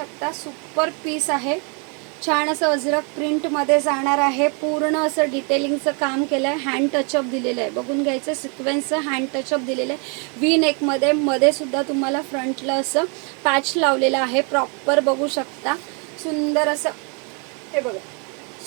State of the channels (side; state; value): left; quieter; 36.2 dB